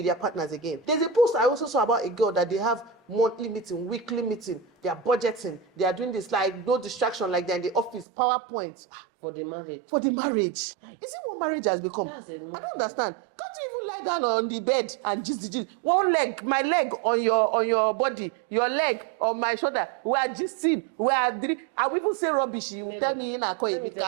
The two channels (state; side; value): drops out; left; at 8.1 s